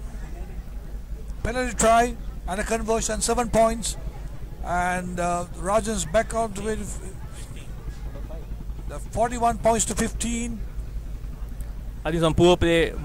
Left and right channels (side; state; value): both; identical; correlation 1.00